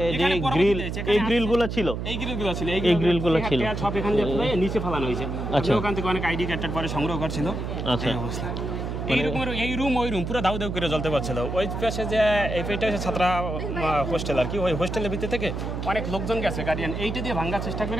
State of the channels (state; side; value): noise; right; hum, 4 dB below the sound